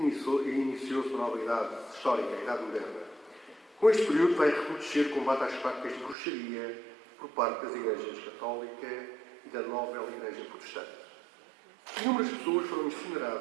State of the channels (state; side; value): drops out; left; at 6.2 s